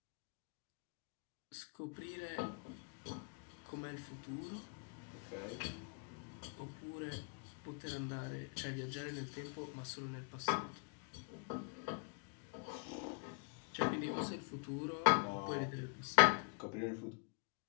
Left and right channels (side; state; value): right; quieter; 34.5 dB